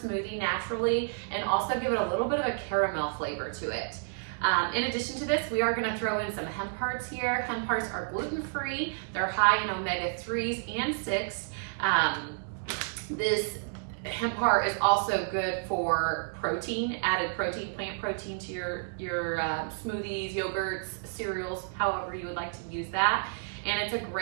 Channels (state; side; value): silent; left; digital silence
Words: naturally and also give it a little bit of a caramel flavor to it. In addition to this, we are going to throw in some hemp hearts here. Hemp hearts are gluten-free. They're high in omega-3s and 6. This hemp heart is also good for protein, added protein, plant protein to your smoothies, yogurts, cereals, however you would like to use that. And it's a